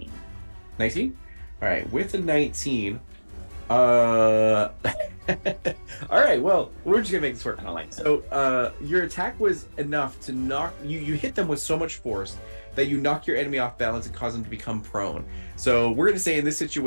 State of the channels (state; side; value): inverted; both; correlation -1.00